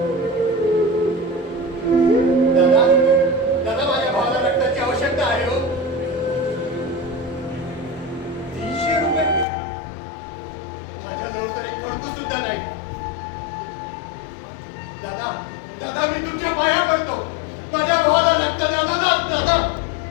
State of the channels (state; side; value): drops out; right; at 9.5 s